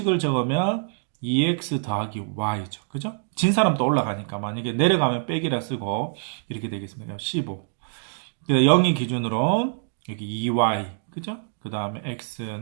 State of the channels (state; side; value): silent; left; 62 dB below the other